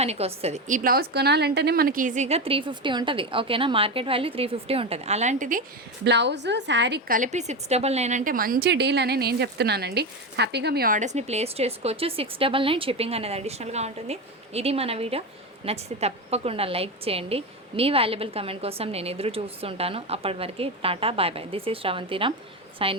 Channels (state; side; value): normal; both; correlation 0.17